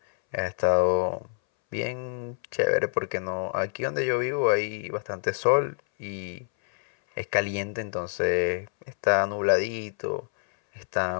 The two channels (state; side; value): silent; right; 60 dB below the other